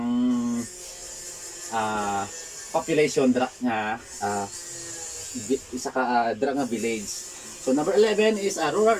population dra nga isa ka dra nga village. So number 11 is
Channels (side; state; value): both; identical; correlation 1.00